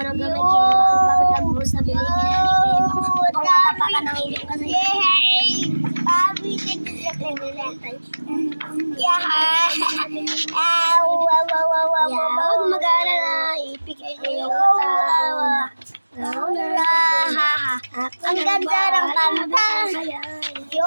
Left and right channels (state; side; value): inverted; both; correlation -1.00